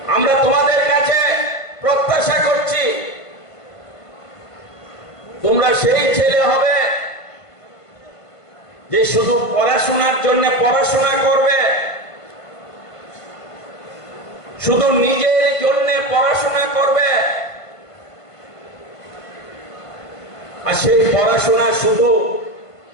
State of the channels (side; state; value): right; late; 1.5 ms